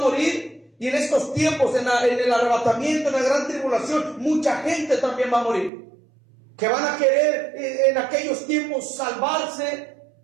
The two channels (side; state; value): left; drops out; at 5.7 s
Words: y en estos tiempos, en el arrebatamiento, en la gran tribulación, mucha gente también va a morir. Que van a querer en aquellos tiempos salvarse,